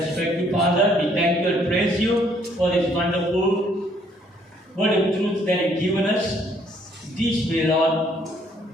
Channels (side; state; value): both; normal; correlation 0.65